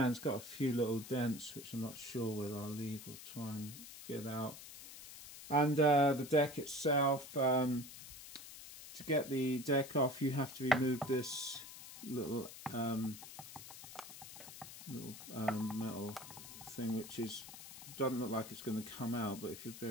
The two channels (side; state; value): left; noise; hiss, 14 dB below the sound